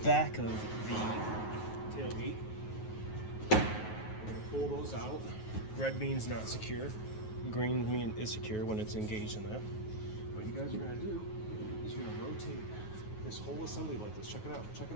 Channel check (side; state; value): right; late; 9.4 ms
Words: of the tailgate. We're going to pull those out. Red means not secure. Green means is secure when it's engaged in that. What you guys are going to do is you're going to rotate this whole assembly like this. Check it out. Check it